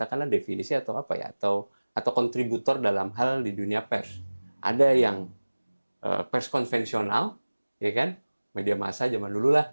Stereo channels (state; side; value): inverted; both; correlation -1.00